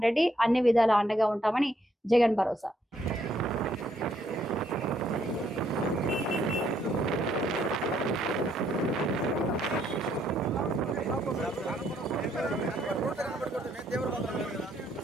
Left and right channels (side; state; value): both; normal; correlation 0.72